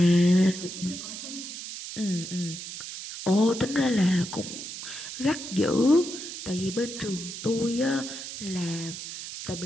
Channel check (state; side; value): noise; right; hiss, 9 dB below the sound